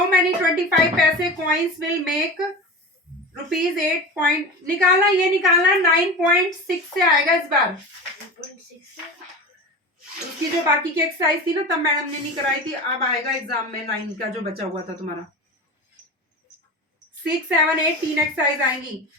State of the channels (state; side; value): normal; both; correlation 0.29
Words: मेनी 25 पैसे कॉइन्स विल मेक ₹8 निकालना, ये निकालना 9.6 से आएगा इस बार। उसकी जो बाकी की एक्सरसाइज थी ना तब मैडम ने नहीं कराई थी, अब आएगा एग्जाम में 9 का जो बचा हुआ था तुम्हारा। 6 7 8 3 एक्सरसाइज आएंगी।